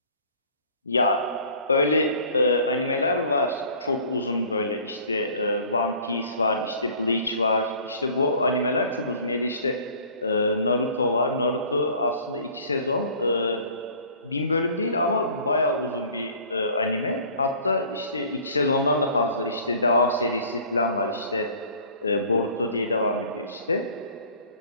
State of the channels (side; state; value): both; inverted; correlation -0.51